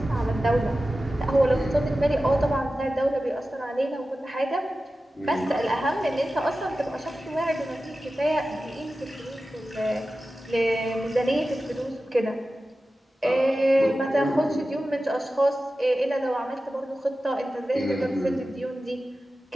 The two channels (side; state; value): both; normal; correlation 0.94